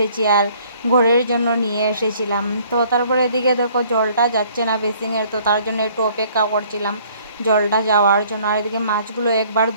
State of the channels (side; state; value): both; inverted; correlation -0.58